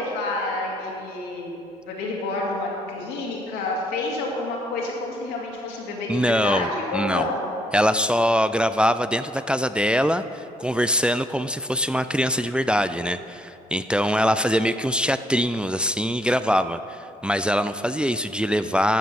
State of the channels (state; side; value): normal; both; correlation 0.71